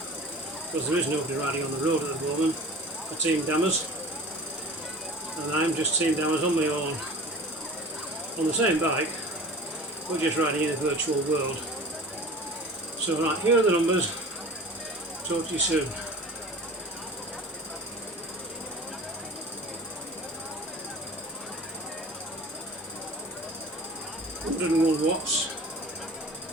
because there is nobody riding on the road at the moment for Team Dammers, and I'm just Team Dammers on my own, on the same bike, but just riding in a virtual world. So right, here are the numbers. Talk to you soon. 101 watts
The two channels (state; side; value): normal; both; correlation 0.40